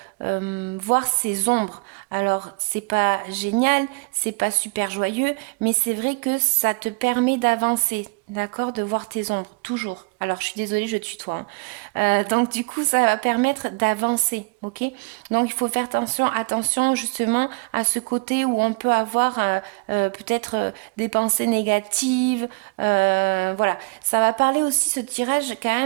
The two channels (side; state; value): left; quieter; 28.8 dB